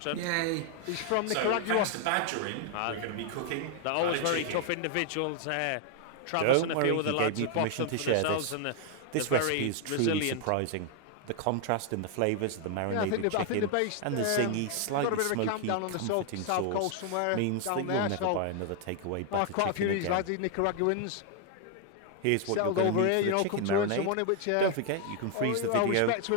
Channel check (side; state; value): both; different; correlation 0.01